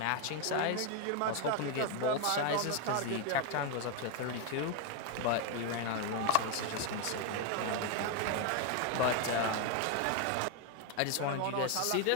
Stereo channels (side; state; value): both; different; correlation 0.01